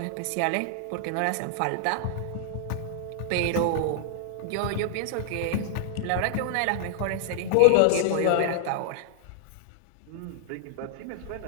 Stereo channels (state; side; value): different; both; correlation -0.01